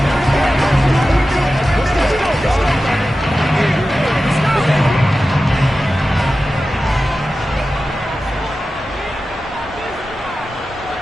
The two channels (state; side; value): normal; both; correlation 0.93